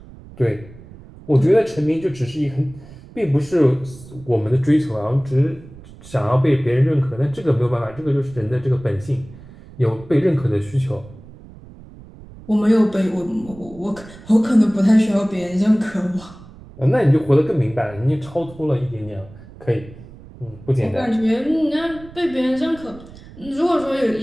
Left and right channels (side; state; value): right; noise; rumble, 19 dB below the sound